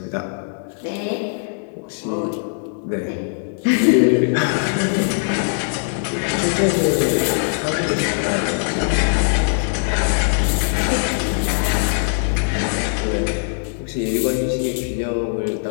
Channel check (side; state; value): right; silent; digital silence